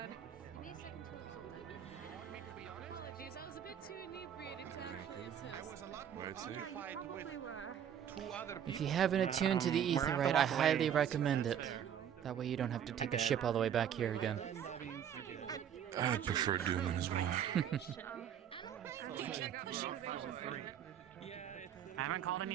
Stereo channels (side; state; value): left; quieter; 9.2 dB